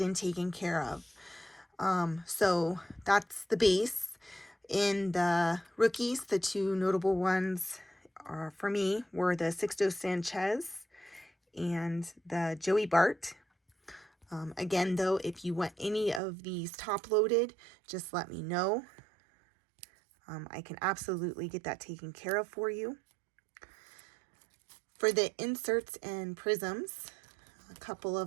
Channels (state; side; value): drops out; left; at 16.2 s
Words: and taken care of. So that's the base. In the rookies, the two notable ones are, for me, were the Sixto Sanchez and the Joey Bart. Again, though, if you want any of these top loaded, just let me know. I can absolutely get that taken care of for you. For the inserts and prisms, a couple